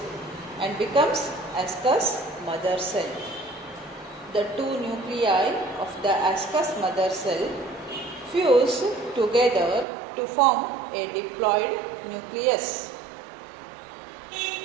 and becomes ascus mother cell. The two nuclei of the ascus mother cell fuse together to form a diploid nucleus.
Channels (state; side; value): drops out; left; at 9.9 s